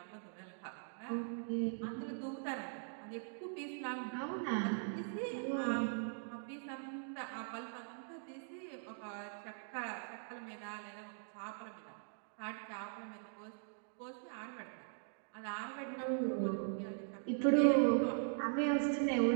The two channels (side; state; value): left; silent; digital silence